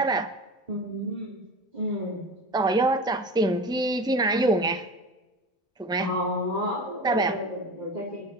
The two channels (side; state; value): both; normal; correlation 0.31